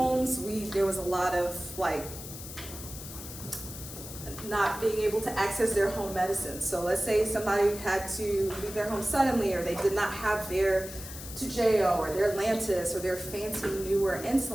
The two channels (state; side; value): noise; left; hiss, 12 dB below the sound